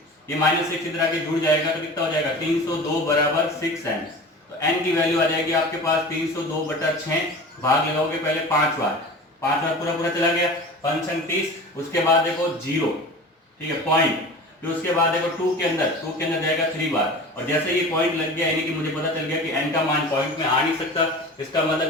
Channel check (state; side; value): normal; both; correlation 0.36